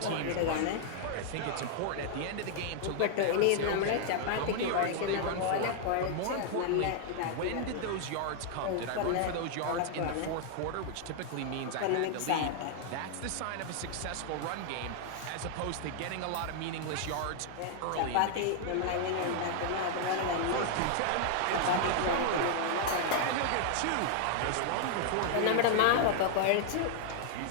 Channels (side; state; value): both; different; correlation 0.00